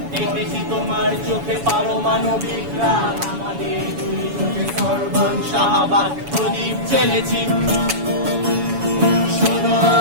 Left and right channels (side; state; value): left; late; 7.1 ms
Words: দেখেছি তোমার চোখে পারমাণবিক রাগ, আমাদের দুই চোখে সর্বং শাহবাগ প্রদীপ জ্বেলেছি। শোনো